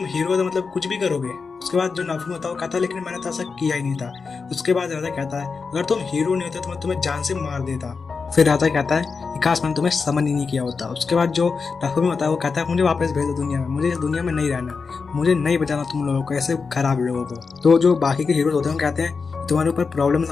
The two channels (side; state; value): right; quieter; 4.9 dB